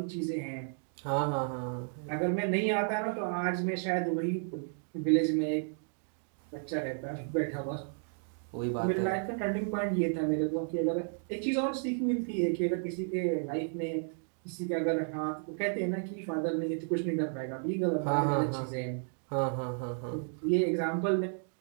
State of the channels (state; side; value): silent; left; 56 dB below the other